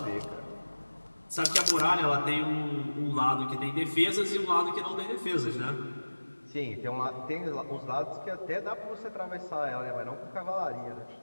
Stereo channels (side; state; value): both; inverted; correlation -1.00